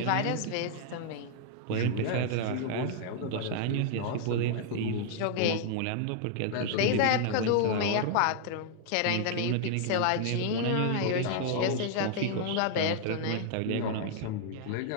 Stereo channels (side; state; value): both; different; correlation -0.01